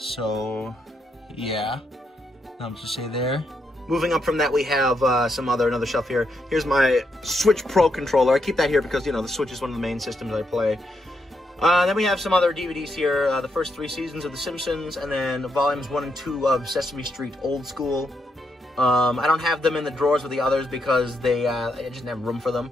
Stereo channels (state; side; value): normal; both; correlation 0.79